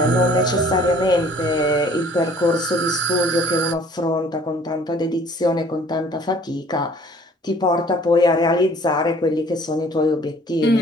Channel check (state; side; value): normal; both; correlation 0.54